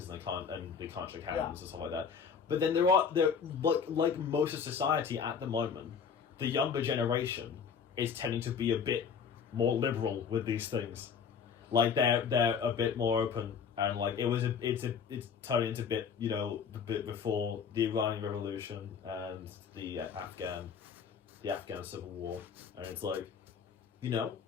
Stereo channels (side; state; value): right; quieter; 6.6 dB